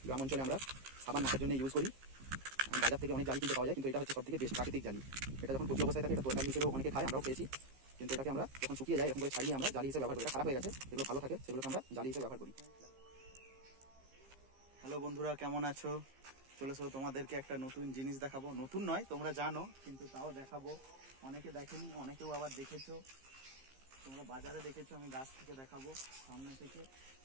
গ্রাম অঞ্চলে আমরা সাবান মাখার জন্য ইউজ করি। বাজার থেকে অনেক জালি কিনতে পাওয়া যায়, কিন্তু এটা হচ্ছে সবথেকে বেস্ট প্রাকৃতিক জালি। এটা যখন কচি অবস্থায় থাকে এটা তরকারি হিসেবেও অনেকে খায়, আমরাও খেয়েছি। কিন্তু এটাকে আমরা যখন শুকিয়ে যায় এরকম করে ছাড়িয়ে আমরা জালি হিসেবে ব্যবহার করি। এটা খারাপ হয়ে গেছে, যেগুলো ভালো থাকে সেগুলোকে আমরা জালি হিসেবে ব্যবহার করি। হ্যালো বন্ধুরা, কেমন আছো? চলেছো তোমাদেরকে একটা নতুন জিনিস দেখাবো। নতুন নয়, তোমরা জানো, কিন্তু তাও দেখাবো। অনেকে দেখেনি, অনেকেও আবার দেখেছো। তোমরা বাজারে দেখেছো, আমি গাছ থেকে দেখাবো, সামনে থেকে।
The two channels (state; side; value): late; left; 15 ms